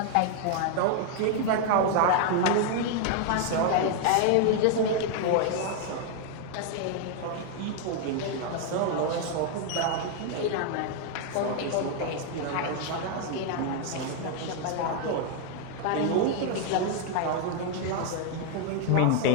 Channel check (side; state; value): both; different; correlation 0.00